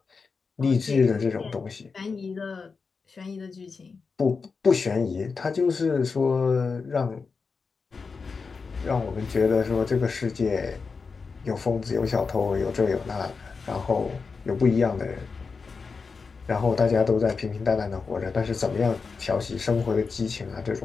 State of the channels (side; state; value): right; quieter; 4.8 dB